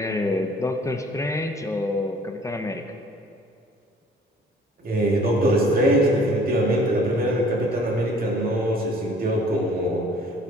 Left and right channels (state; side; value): normal; both; correlation 0.54